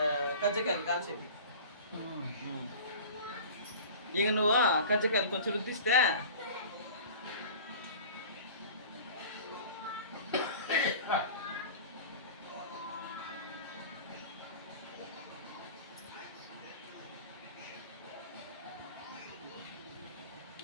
కజ్జకాయలు కాల్చేది. ఇక నువ్వు కజ్జకాయలు కొంచెం రుద్దిస్తే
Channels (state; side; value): inverted; both; correlation -0.40